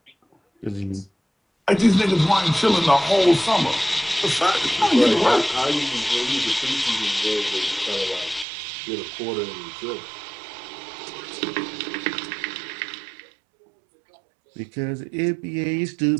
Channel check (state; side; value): drops out; left; at 8.5 s